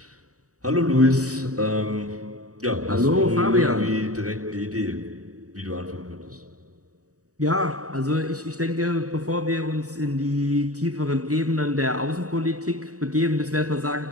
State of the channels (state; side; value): late; left; 0.66 ms